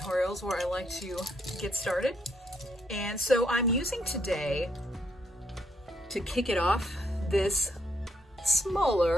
where I like to get started. And so I'm using today, to kick it off, this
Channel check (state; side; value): normal; both; correlation 0.74